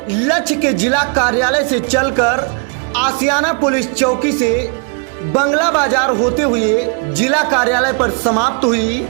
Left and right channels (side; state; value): left; quieter; 37.7 dB